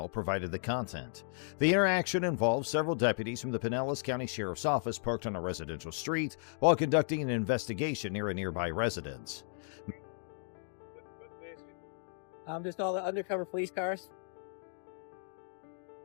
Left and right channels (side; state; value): right; silent; digital silence